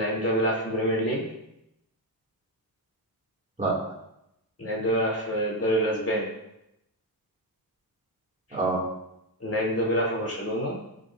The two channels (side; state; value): both; normal; correlation 0.06